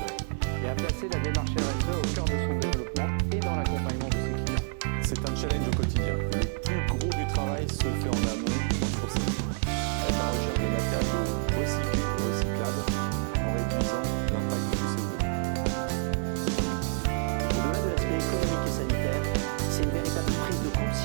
et a placé la démarche RSE au cœur de son développement et dans l'accompagnement de ses clients. C'est un challenge au quotidien. Le plus gros du travail se fait en amont dans le sourcing, avec la recherche de matériaux recyclés et recyclables en réduisant l'impact du CO2. Au-delà de l'aspect économique et sanitaire, c'est une véritable prise de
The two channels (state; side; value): silent; left; digital silence